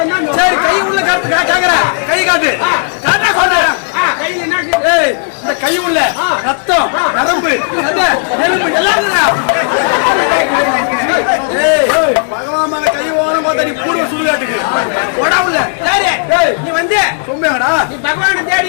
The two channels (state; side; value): silent; right; digital silence